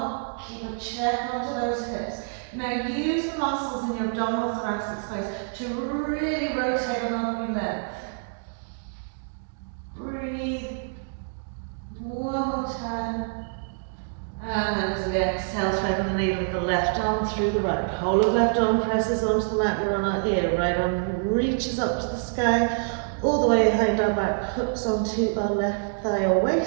keep a check onto those hips. Now use the muscles in your abdominal thoracic space to really rotate along your length. Breathe. One more time. And then as we exhale, threading the needle of the left arm through the right. Whole of left arm presses onto the mat, we're on our ear. Right arm reaches up to the sky, all the way behind our back, hooks onto our left thigh or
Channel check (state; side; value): silent; left; digital silence